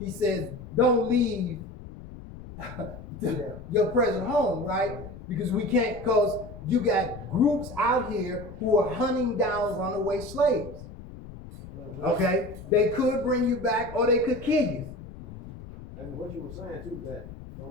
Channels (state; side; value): noise; left; rumble, 14 dB below the sound